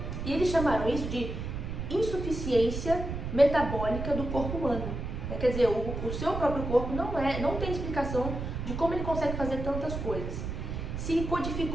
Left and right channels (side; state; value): right; noise; rumble, 5 dB below the sound